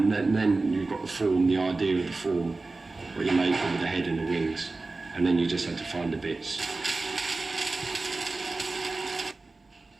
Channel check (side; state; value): left; quieter; 3.5 dB